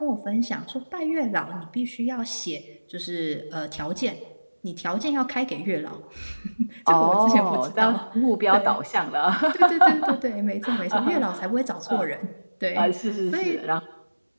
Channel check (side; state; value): both; inverted; correlation -1.00